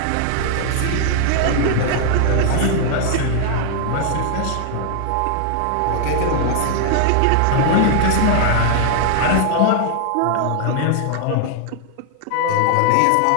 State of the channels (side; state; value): both; different; correlation 0.00